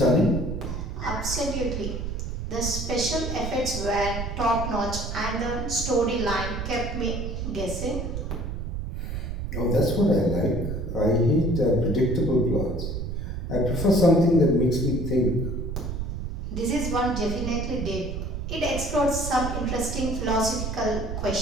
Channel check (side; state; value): right; noise; rumble, 4 dB below the sound